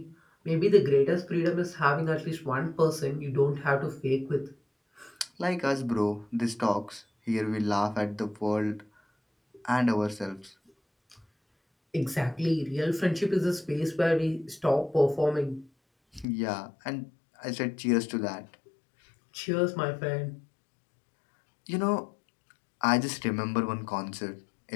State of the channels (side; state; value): right; drops out; at 16.2 s